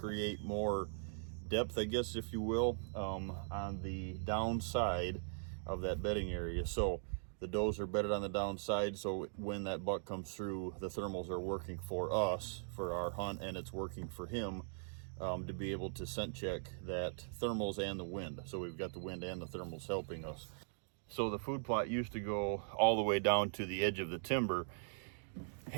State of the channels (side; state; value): left; silent; digital silence